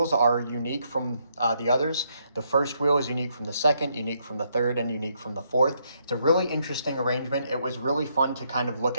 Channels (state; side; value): inverted; both; correlation -0.75